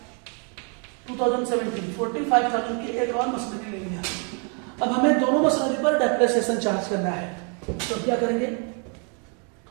2017 45,000 की एक और मशीनरी ले लिया। अब हमें दोनों मशीनरी पर डेप्रिसिएशन चार्ज करना है, तो क्या करेंगे?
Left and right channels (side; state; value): left; quieter; 37.9 dB